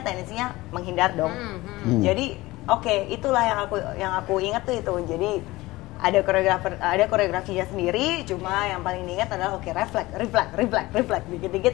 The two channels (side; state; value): right; quieter; 19.5 dB